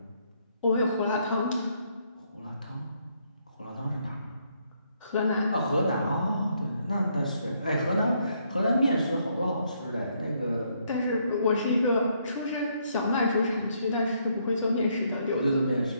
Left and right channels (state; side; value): inverted; both; correlation -0.72